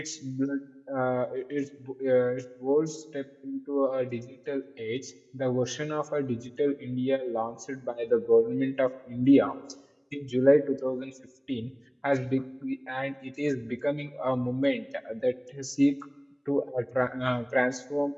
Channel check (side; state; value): both; identical; correlation 1.00